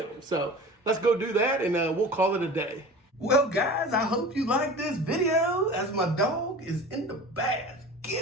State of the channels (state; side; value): normal; both; correlation 0.37